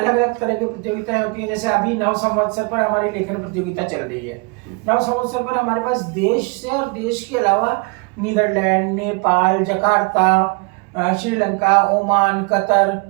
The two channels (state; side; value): quieter; left; 30.8 dB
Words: अलग तरह की प्रतियोगिताएं होती है। जैसे अभी नव संवत्सर पर हमारी लेखन प्रतियोगिता चल रही है। नव संवत्सर पर हमारे पास देश से और देश के अलावा Netherlands, Nepal, Jakarta, Sri Lanka, Oman, Qatar